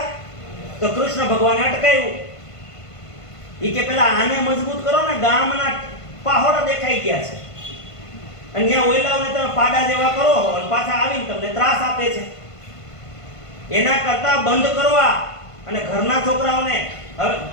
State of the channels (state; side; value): late; right; 1.5 ms